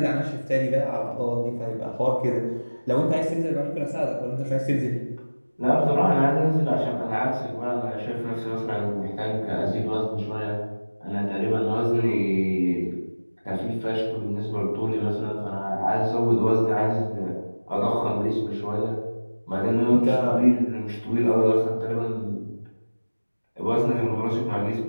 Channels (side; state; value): both; inverted; correlation -1.00